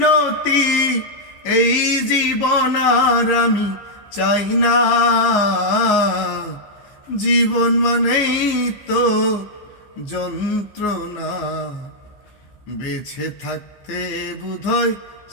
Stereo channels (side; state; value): right; late; 15 ms